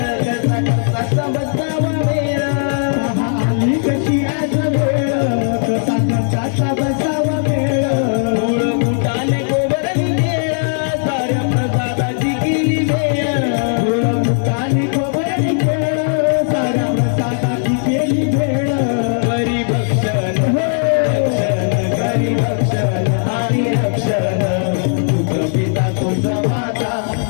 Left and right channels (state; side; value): silent; right; 61 dB below the other